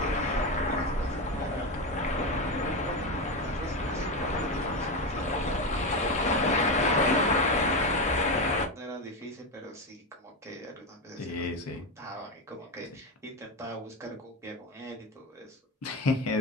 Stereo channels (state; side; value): normal; both; correlation 0.15